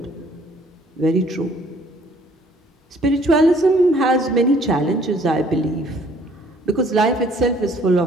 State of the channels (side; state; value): both; normal; correlation 0.59